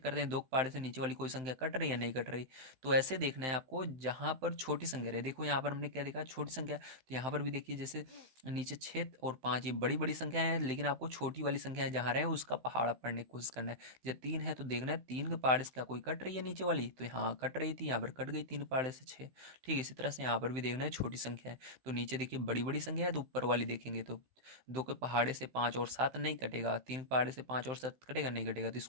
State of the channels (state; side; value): late; left; 15 ms